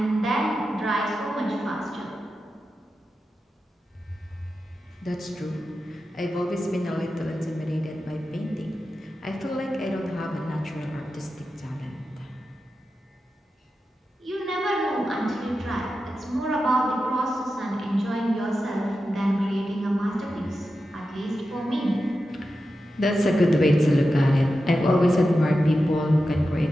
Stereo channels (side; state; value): both; normal; correlation 0.91